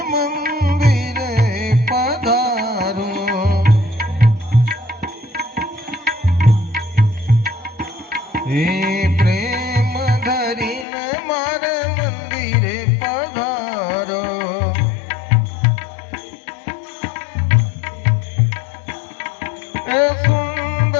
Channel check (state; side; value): drops out; right; at 10.9 s